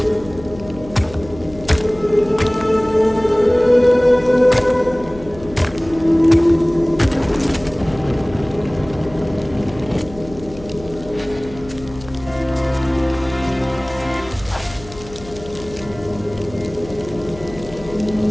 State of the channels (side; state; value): left; noise; hum, 17 dB below the sound